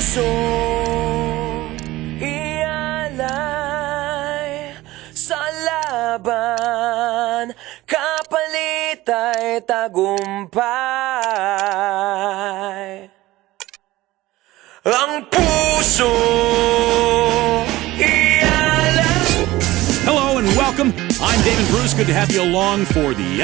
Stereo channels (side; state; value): left; quieter; 17.7 dB